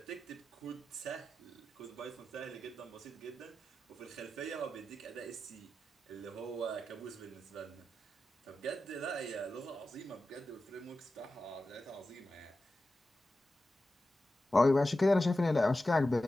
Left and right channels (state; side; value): normal; both; correlation 0.92